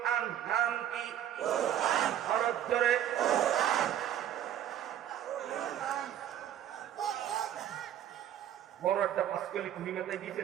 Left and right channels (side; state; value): left; quieter; 10.9 dB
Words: নাম কি? কোরআন। হরফ ধরে বড় একটা পাঁচকলি কুড়িমাতায় দিয়েছে,